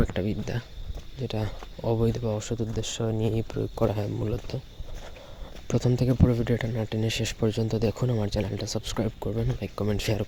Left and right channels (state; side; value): identical; both; correlation 1.00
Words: একটা বিদ্যা, যেটা অবৈধ বা অসৎ উদ্দেশ্য নিয়েই প্রয়োগ করা হয় মূলত। প্রথম থেকে পুরো ভিডিওটা না টেনে শেষ পর্যন্ত দেখুন। আমার চ্যানেলটা সাবস্ক্রাইব করবেন, লাইক কমেন্ট শেয়ার